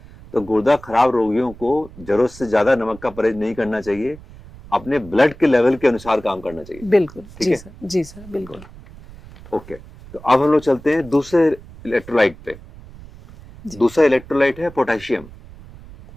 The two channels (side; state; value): right; noise; rumble, 19 dB below the sound